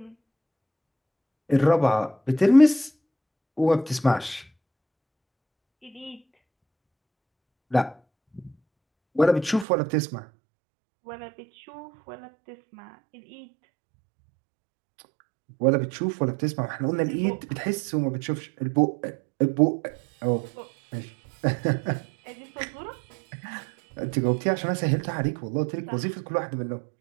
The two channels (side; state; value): left; drops out; at 9.7 s